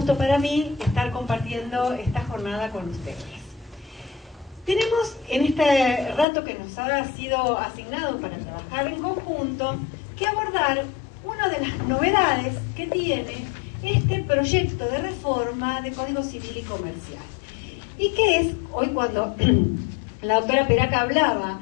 para mí estar compartiendo esta jornada con ustedes. Tenemos en este rato que nos ha sido asignado para trabajar en conjunto que abordar una de las novedades que tiene este proyecto de reforma de Código Civil y Comercial. Y que es, hoy cuando la doctora Peraca hablaba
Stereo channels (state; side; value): drops out; right; at 6.2 s